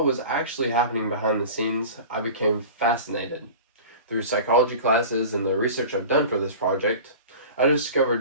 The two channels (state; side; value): inverted; both; correlation -0.36